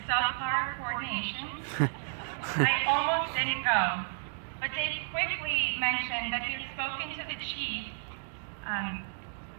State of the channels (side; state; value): left; silent; digital silence